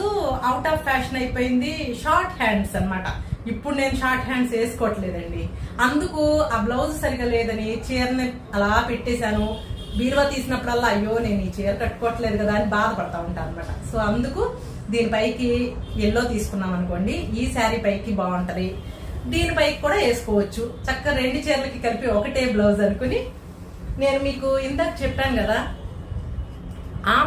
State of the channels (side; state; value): both; identical; correlation 1.00